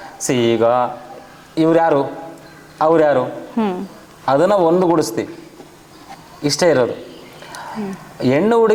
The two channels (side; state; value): both; identical; correlation 1.00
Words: ಈಗ ಇವ್ರ್ಯಾರು ಅವ್ರ್ಯಾರು ಅದನ್ನು ಒಂದುಗೂಡಿಸ್ತೀವಿ, ಇಷ್ಟೇ ಇರೋದು. ಹೆಣ್ಣು